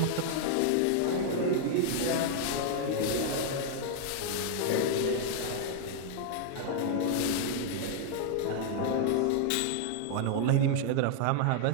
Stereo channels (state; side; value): different; both; correlation 0.00